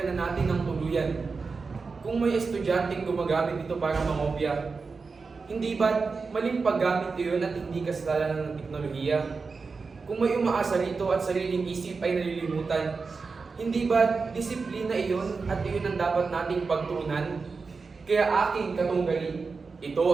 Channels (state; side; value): quieter; left; 4.6 dB